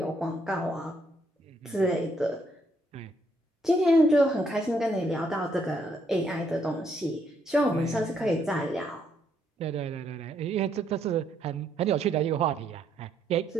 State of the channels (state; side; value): normal; both; correlation 0.72